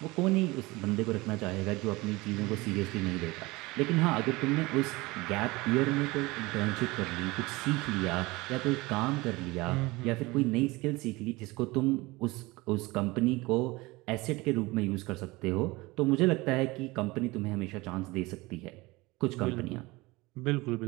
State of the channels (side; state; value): left; quieter; 22.1 dB